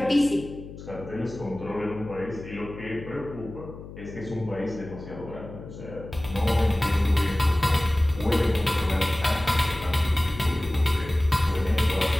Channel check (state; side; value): noise; left; hum, 14 dB below the sound